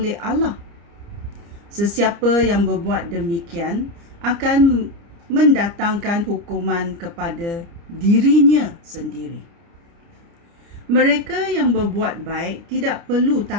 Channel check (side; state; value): left; late; 29 ms